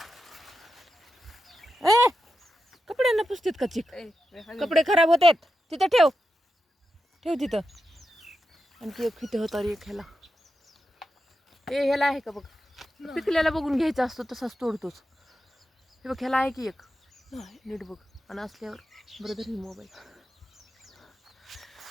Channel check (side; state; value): both; normal; correlation 0.88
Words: ए कपड्यांना पुसतेत का चिक? कपडे खराब होतात. तिथं ठेव, ठेव तिथं. आणखी एक इथे होता रे, एक ह्याला. ए ह्याला आहे का बघ, पिकल्याला बघून घ्यायचा असतो, तसाच तोडतोच. हे बघ ह्याला आहे की एक, नीट बघ. आणि असल्यावर ब्रदर ही मोबाईल.